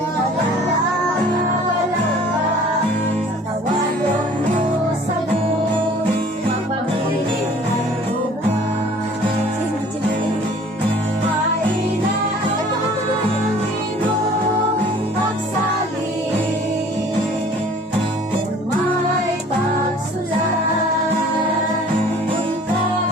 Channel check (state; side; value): normal; both; correlation 0.51